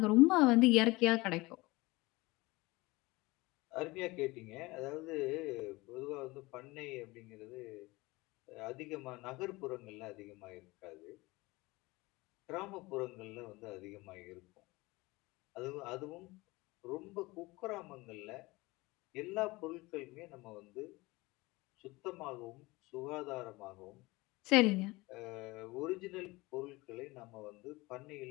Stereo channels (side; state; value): right; quieter; 22.0 dB